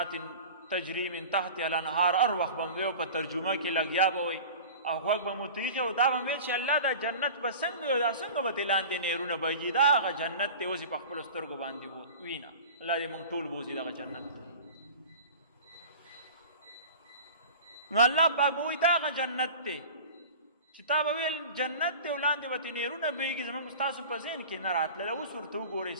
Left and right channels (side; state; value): both; inverted; correlation -0.38